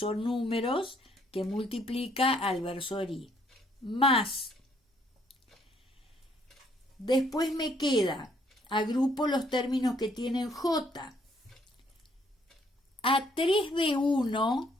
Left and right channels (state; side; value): normal; both; correlation 0.67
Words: números que multiplica al versor I. Más. Después me queda, agrupo los términos que tienen J. A3B1